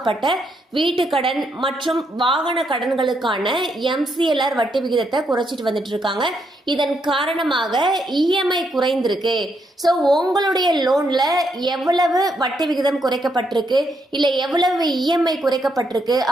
வீட்டு கடன் மற்றும் வாகன கடன்களுக்கான MCLR வட்டி விகிதத்தை குறைச்சிட்டு வந்துட்டு இருக்காங்க. இதன் காரணமாக EMI குறைந்திருக்கு. ஸோ உங்களுடைய லோன்ல எவ்வளவு வட்டி விகிதம் குறைக்கப்பட்டிருக்கு, இல்ல எவ்வளவு EMI குறைக்கப்பட்டிருக்கு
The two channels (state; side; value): normal; both; correlation 0.77